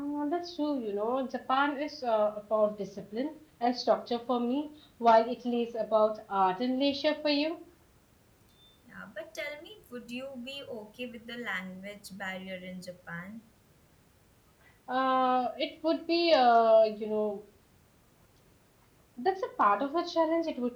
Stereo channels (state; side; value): identical; both; correlation 1.00